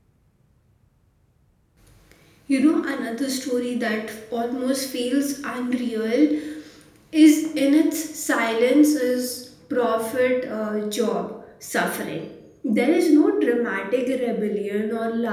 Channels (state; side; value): identical; both; correlation 1.00